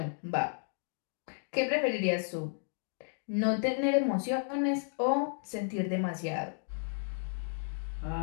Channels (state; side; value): silent; right; digital silence